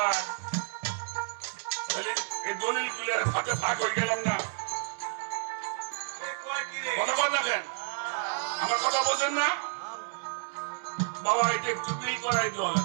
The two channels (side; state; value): left; silent; 55 dB below the other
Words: এই দলিল গুলার হাতে ফাঁক হয়ে গেলাম না। কথা বল দেখেন, আমার কথা বোঝেন না? বাবা এটা একটু মিল করাই দল।